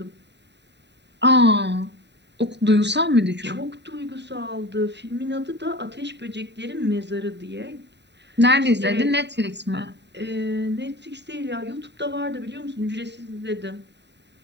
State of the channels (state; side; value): late; left; 0.50 ms